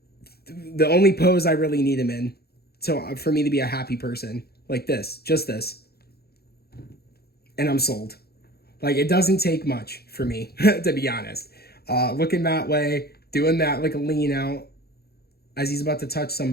pose I really need him in. So for me to be a happy person, like this, just this. And I'm sold. Like, it doesn't take much for me, to be honest. Looking that way, doing that like a lean out as he's about to touch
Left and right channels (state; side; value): late; right; 0.46 ms